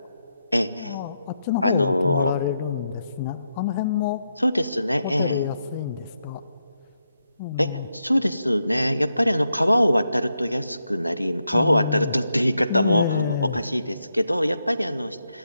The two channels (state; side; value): inverted; both; correlation -0.83